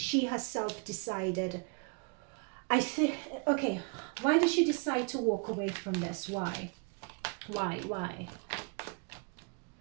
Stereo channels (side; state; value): left; quieter; 33.7 dB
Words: herself decided. I think, okay, why did she decide to walk away from this? Why?